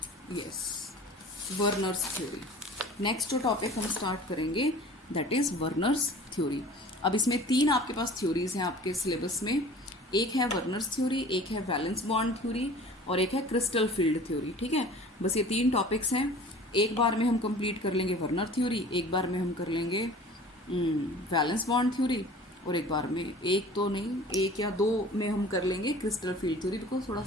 yes Werner's theory. Next जो टॉपिक हम स्टार्ट करेंगे दैट इज वर्नर्स थ्योरी। अब इसमें 3 आपके पास थ्योरीज हैं आपके सिलेबस में, एक है वर्नर्स थ्योरी, एक है वैलेंस बॉन्ड थ्योरी और एक है क्रिस्टल फील्ड थ्योरी, ठीक है। बस ये 3 टॉपिक्स हैं। एक बार में हम कंप्लीट कर लेंगे वर्नर थ्योरी, एक बार में हम कर लेंगे वैलेंस बॉन्ड थ्योरी, और एक बार में, एक तो नहीं, 1 या 2 में हम कर लेंगे क्रिस्टल फील्ड थ्योरी, बिकॉज थोड़ा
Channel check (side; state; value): both; normal; correlation 0.44